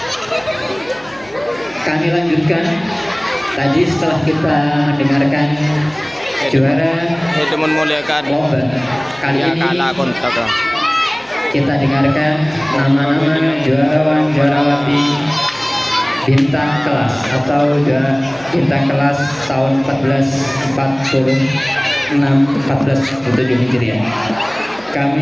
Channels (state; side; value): noise; left; hum, 26 dB below the sound